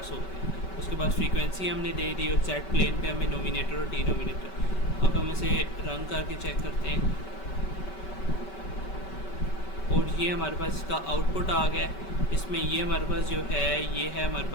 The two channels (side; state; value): right; late; 5.2 ms